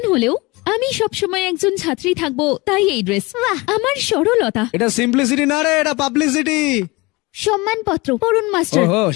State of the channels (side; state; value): right; quieter; 24.2 dB